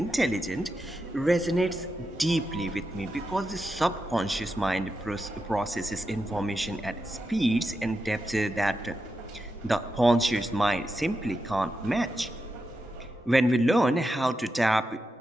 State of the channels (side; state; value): both; normal; correlation 0.87